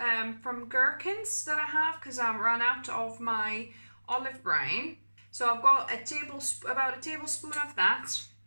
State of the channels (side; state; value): both; inverted; correlation -1.00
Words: from gherkins that I have because I ran out of my olive brine. So I've got about a tablespoon of that,